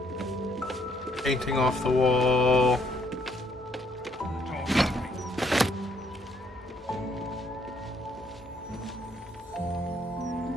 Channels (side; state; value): both; normal; correlation 0.68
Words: Painting off the wall.